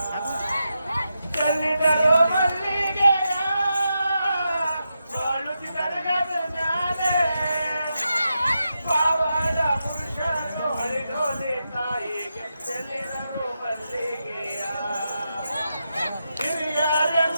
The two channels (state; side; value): inverted; both; correlation -0.87